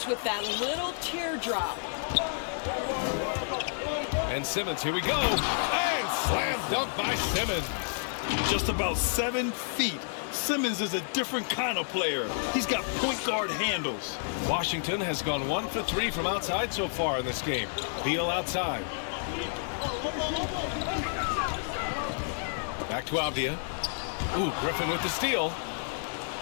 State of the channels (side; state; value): right; silent; 58 dB below the other